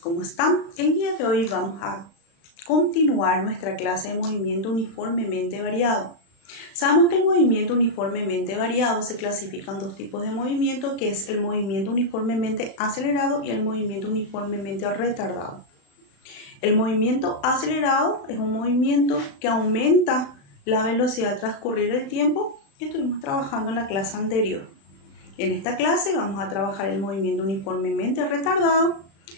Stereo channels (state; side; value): late; right; 36 ms